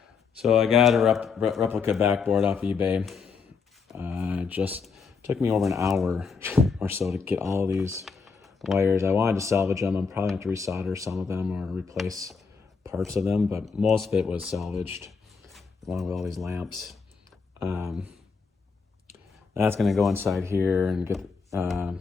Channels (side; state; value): right; quieter; 5.3 dB